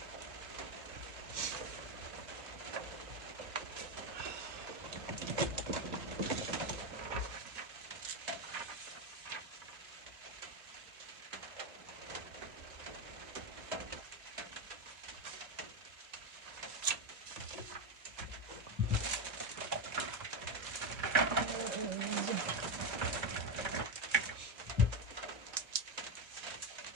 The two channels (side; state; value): left; late; 2.6 ms